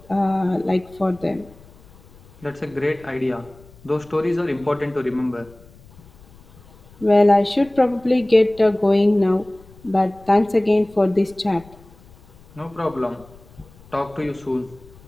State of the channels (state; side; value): noise; left; rumble, 25 dB below the sound